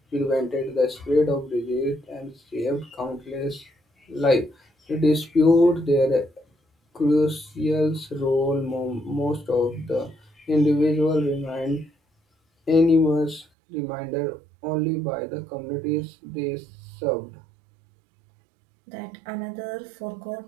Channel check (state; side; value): drops out; left; at 13.5 s